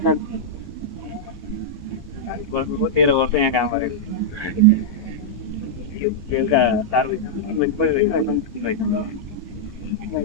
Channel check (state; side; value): late; right; 1.2 ms